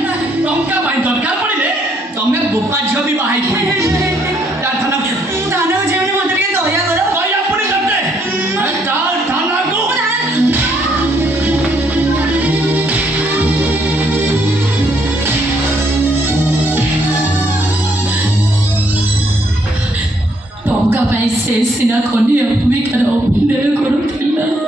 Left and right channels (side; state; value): both; normal; correlation 0.70